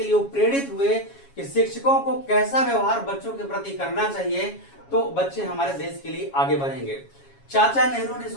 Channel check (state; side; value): late; right; 7.2 ms